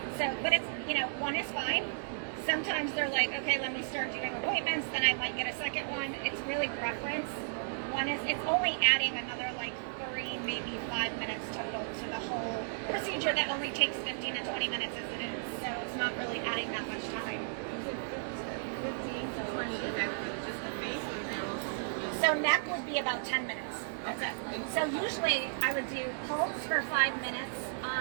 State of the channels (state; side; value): silent; left; digital silence